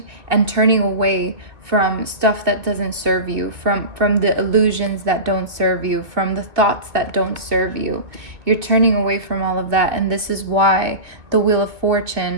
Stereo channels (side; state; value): left; late; 1.9 ms